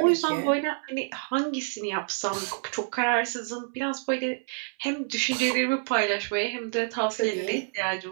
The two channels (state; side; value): silent; left; 59 dB below the other